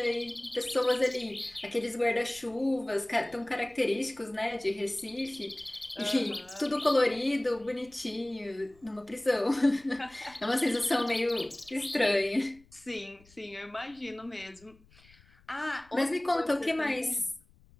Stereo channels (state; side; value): noise; left; rumble, 28 dB below the sound